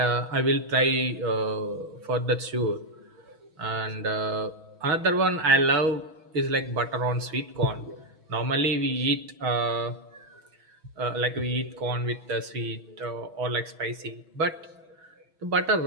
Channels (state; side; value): late; left; 6.2 ms